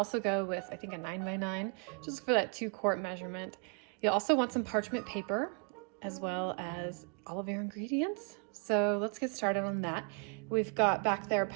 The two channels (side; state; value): left; quieter; 38.2 dB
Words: go with, I think, a 9 by 9, just for that 2-quart measurement. You'll also want some parchment paper as well as all of your ingredients. So let's get started on that. We've got back there